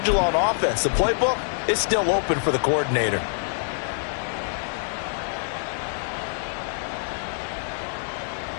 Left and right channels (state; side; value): silent; right; 61 dB below the other